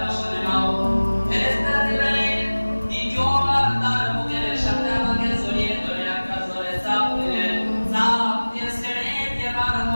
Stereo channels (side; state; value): both; inverted; correlation -1.00